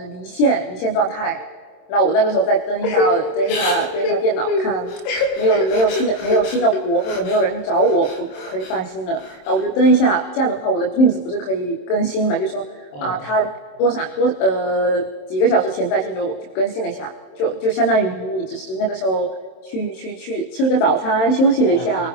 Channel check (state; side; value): late; right; 27 ms